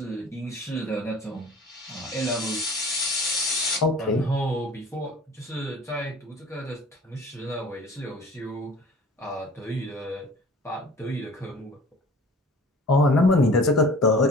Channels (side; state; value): both; normal; correlation 0.46